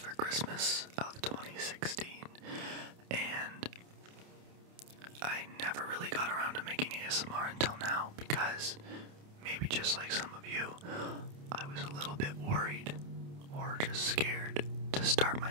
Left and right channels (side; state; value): left; late; 28 ms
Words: Christmas of 2016, and I never really got around to making ASMR until now because, maybe just like some of you, I was a little bit worried or just scared to start